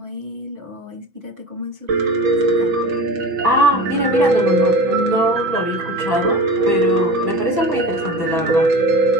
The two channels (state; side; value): late; left; 6.1 ms